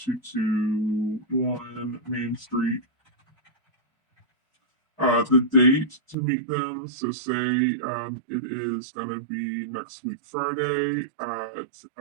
Main Street. The date to meet them, so say it is going to be next week Friday at,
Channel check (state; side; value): drops out; left; at 6.2 s